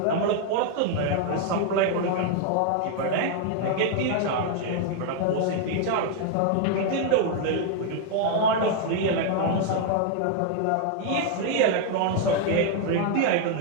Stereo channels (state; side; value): different; both; correlation 0.00